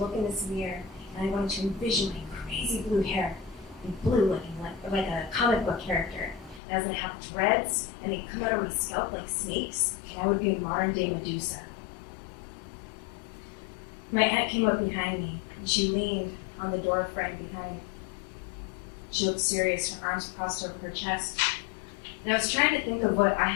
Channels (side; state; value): right; drops out; at 6.6 s